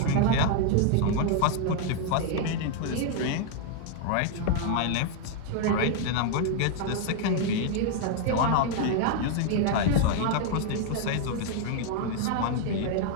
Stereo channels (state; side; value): different; both; correlation 0.00